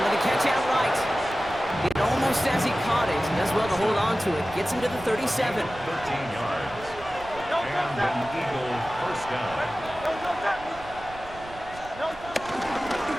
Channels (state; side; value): noise; right; rumble, 17 dB below the sound